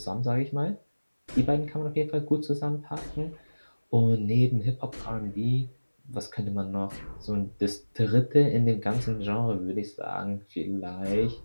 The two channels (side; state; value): both; inverted; correlation -1.00